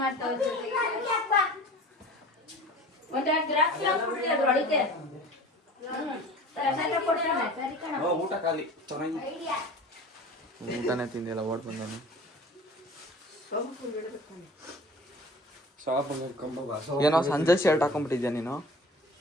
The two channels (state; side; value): normal; both; correlation 0.41